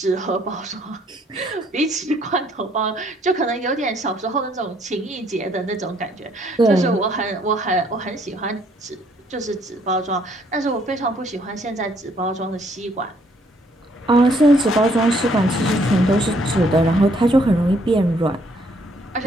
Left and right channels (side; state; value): both; normal; correlation 0.66